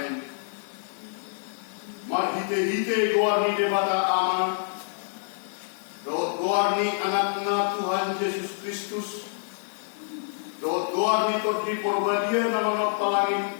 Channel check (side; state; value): right; silent; digital silence